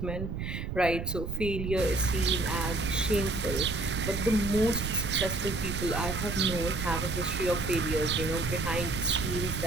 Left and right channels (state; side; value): noise; right; rumble, 5 dB below the sound